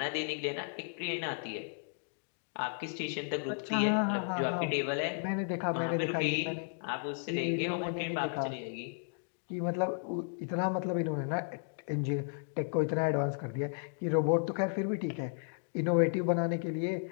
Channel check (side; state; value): right; silent; digital silence